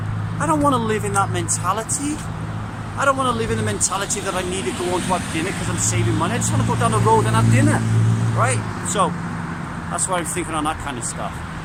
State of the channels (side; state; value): both; identical; correlation 1.00